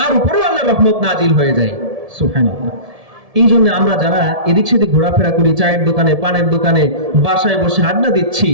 উপরেও আল্লাহর রহমত নাজিল হয়ে যায়। সুবহানাল্লাহ। এই জন্য আমরা যারা এদিক সেদিক ঘোরাফেরা করি, চায়ের দোকানে, পানের দোকানে, বাসায় বসে আড্ডা দিচ্ছি,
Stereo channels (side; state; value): left; late; 1.7 ms